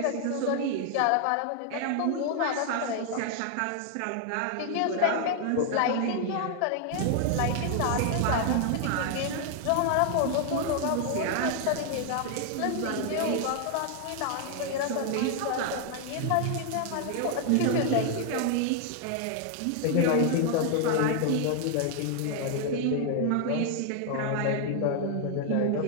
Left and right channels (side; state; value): both; different; correlation 0.00